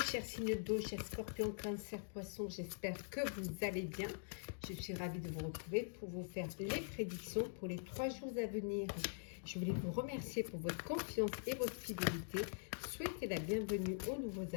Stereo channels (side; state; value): right; silent; digital silence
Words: chers signes d'eau, chers scorpions, cancer, poisson. J'espère que vous allez bien. Je suis ravie de vous retrouver pour vous faire les prédictions pour les 3 jours à venir. Je voulais vous remercier pour votre confiance et votre fidélité. Souhaitez la bienvenue aux nouveaux